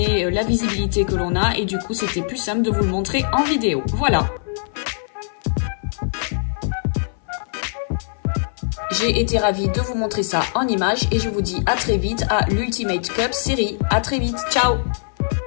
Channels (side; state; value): right; silent; 59 dB below the other